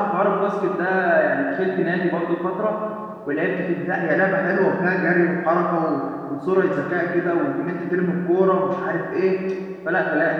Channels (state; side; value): identical; both; correlation 1.00